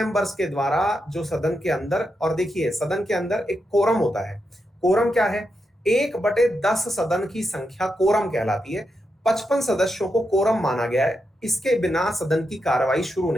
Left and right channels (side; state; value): both; normal; correlation 0.85